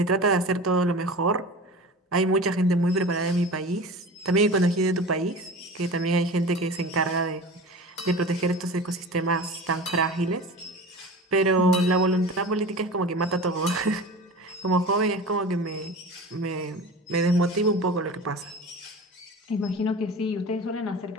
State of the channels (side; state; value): both; normal; correlation 0.34